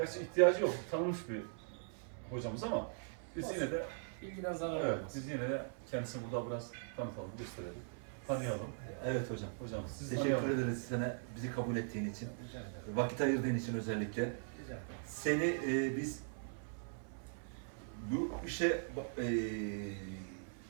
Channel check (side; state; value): left; silent; 51 dB below the other